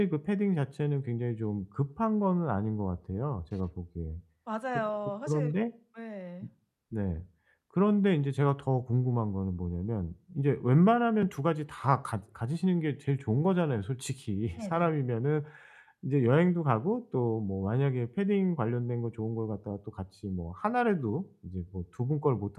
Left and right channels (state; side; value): identical; both; correlation 1.00